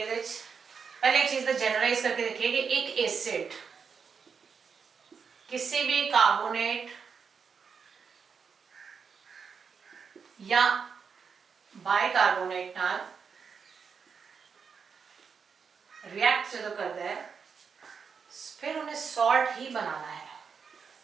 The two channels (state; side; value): quieter; left; 6.0 dB